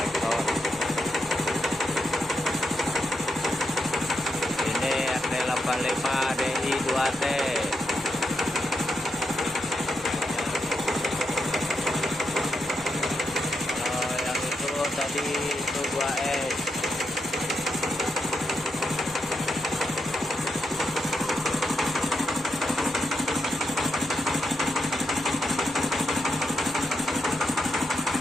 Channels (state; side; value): normal; both; correlation 0.83